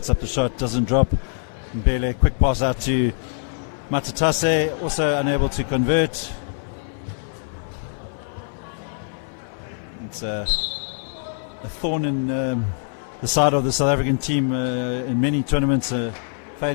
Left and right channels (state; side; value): silent; right; 59 dB below the other